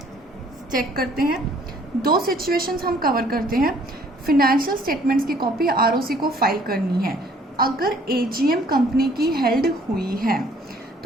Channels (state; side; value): normal; both; correlation 0.59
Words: चेक करते हैं, दो सिचुएशंस हम कवर करते हैं। फिनेंशियल स्टेटमेंट्स की कॉपी आरओसी को फाइल करनी है अगर एजीएम कंपनी की हेल्ड हुई है,